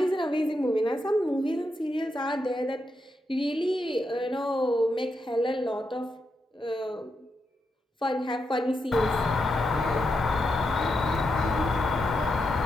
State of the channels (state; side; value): normal; both; correlation 0.84